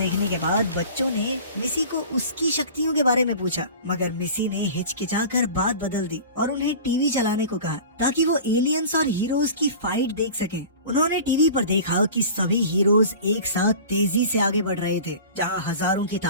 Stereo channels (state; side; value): inverted; both; correlation -0.39